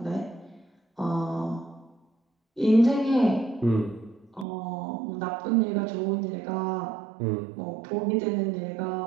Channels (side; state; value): left; drops out; at 4.5 s